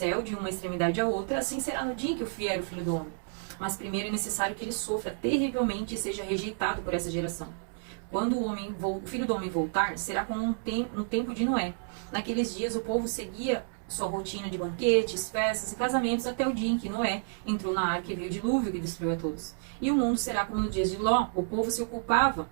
de uma extremidade à outra, assim será no dia em que vier o Filho do Homem. Mas primeiro é necessário que ele sofra terrivelmente e seja rejeitado por essa geração. Quando o filho do homem voltar, será como no tempo de Noé. Naqueles dias o povo seguia sua rotina de banquetes, festas e casamentos até o dia em que Noé entrou na arca e veio o dilúvio que destruiu a todos. E o mundo será como nos dias de Ló. O povo se ocupava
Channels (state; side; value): silent; left; digital silence